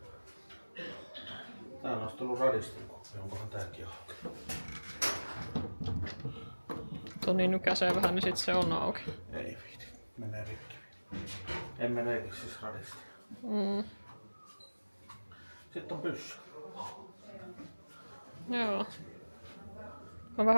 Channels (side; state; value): both; inverted; correlation -1.00